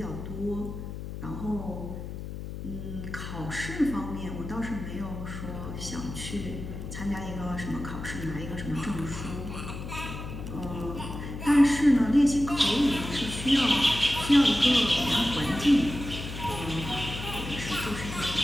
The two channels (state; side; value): noise; left; hum, 8 dB below the sound